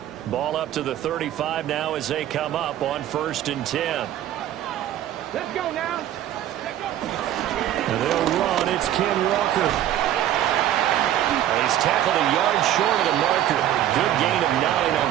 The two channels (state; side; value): quieter; left; 11.9 dB